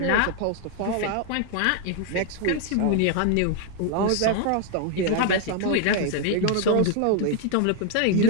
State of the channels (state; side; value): different; both; correlation 0.00